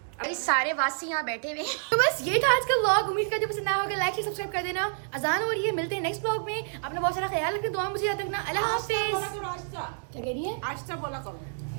ये सारे वासी यहाँ बैठे हुए हैं। तो बस ये था आज का व्लॉग। उम्मीद करती हूँ पसंद आया होगा। लाइक शेयर सब्सक्राइब कर देना। अजान हो रही है, मिलते हैं नेक्स्ट व्लॉग में। अपना बहुत सारा ख्याल रखना, दुआ में मुझे याद रखना। अल्लाह हाफिज। क्या कह रही है? आस्था बोला करो।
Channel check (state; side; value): silent; left; digital silence